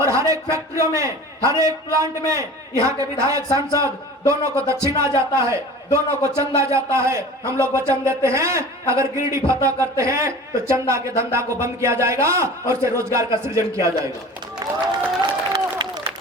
हर एक फैक्ट्रियों में, हर एक प्लांट में यहाँ के विधायक सांसद दोनों को दक्षिणा जाता है, दोनों को चंदा जाता है। हम लोग वचन देते हैं, अगर गिरिडीह फतह करते हैं तो चंदा के धंधा को बंद किया जाएगा और से रोजगार का सृजन किया जाएगा।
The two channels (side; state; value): both; normal; correlation 0.39